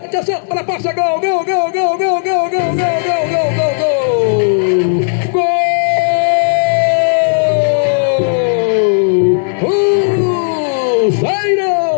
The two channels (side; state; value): right; silent; digital silence